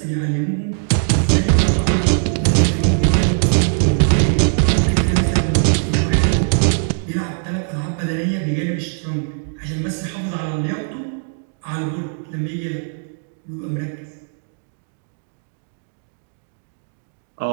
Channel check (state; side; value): silent; left; 61 dB below the other